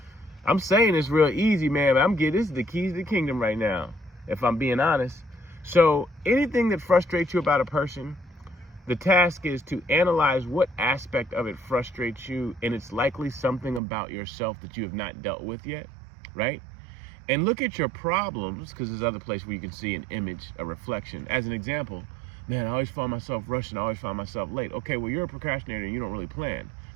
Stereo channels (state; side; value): drops out; left; at 13.8 s